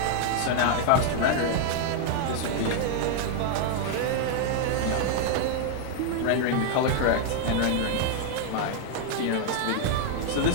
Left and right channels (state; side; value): different; both; correlation 0.00